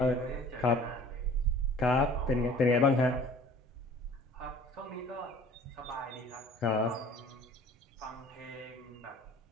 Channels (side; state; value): both; normal; correlation 0.48